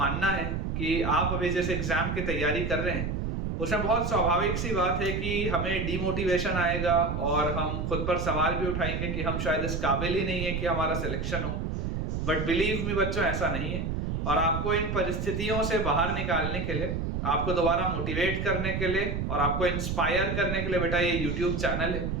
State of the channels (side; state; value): right; noise; rumble, 2 dB below the sound